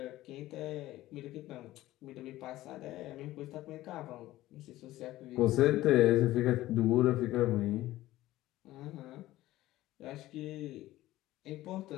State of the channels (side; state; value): right; quieter; 16.0 dB